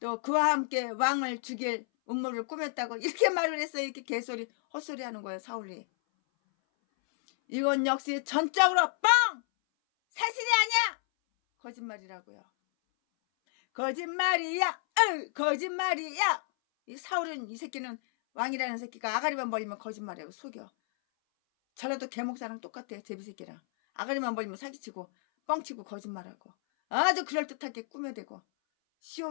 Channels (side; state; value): right; silent; 57 dB below the other